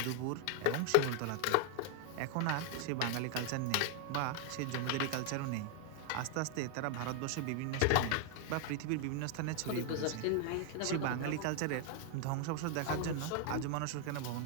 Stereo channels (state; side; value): different; both; correlation 0.00